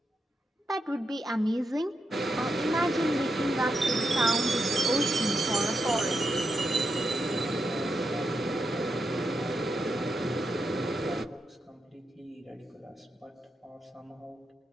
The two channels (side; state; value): both; normal; correlation 0.85